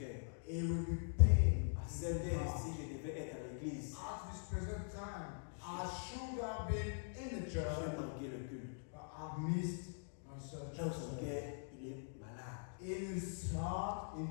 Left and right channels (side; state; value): right; silent; digital silence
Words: He will be pained. À cette heure, si je devais être à l'église, At this present time, I should have been in the j'ai church, manqué le culte. but I've missed my church. Dans son cœur, il est malade. In his heart,